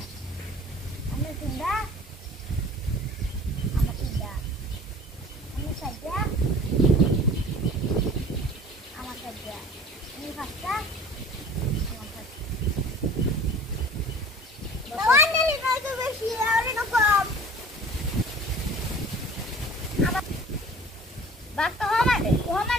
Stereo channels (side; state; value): both; normal; correlation 0.45